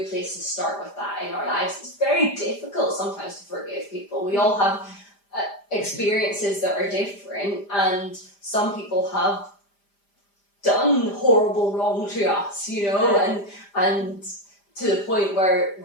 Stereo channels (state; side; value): late; right; 5.0 ms